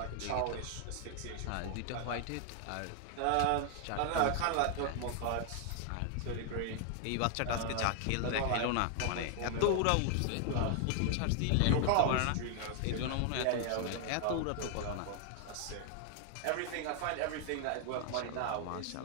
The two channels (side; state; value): both; different; correlation 0.00